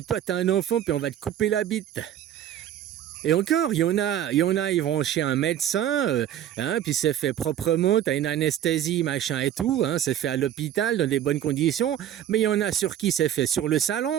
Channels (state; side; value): quieter; left; 10.9 dB